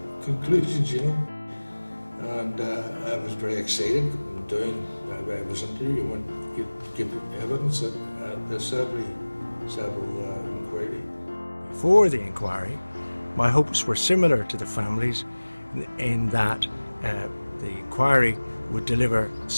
conclusions, you know. And I was very excited going down. I was interviewing to give evidence at the Saville Inquiry. Before the inquiry, my hopes were similar to the families in that the inquiry would deliver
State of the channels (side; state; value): both; inverted; correlation -1.00